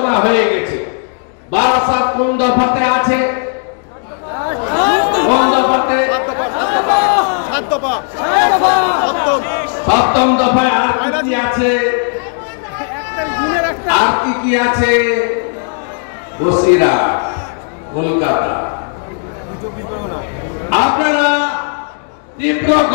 হয়ে গেছে। বারাসাত কোন দফাতে আছে? কোন দফাতে? সপ্তম দফায়। আর কি আছে? আর কি আছে? বসিরহাট, কলকাতা। আপনারা তীব্র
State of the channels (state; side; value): silent; right; 58 dB below the other